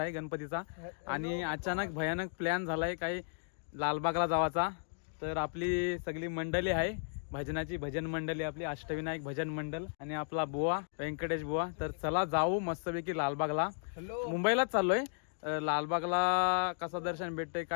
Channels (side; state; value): right; silent; digital silence